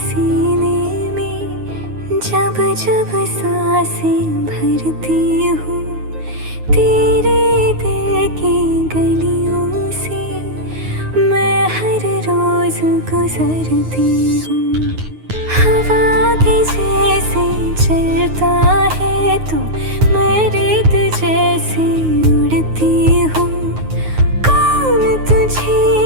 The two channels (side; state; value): left; late; 9.5 ms